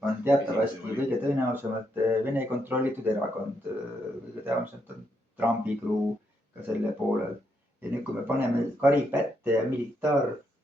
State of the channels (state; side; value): normal; both; correlation 0.78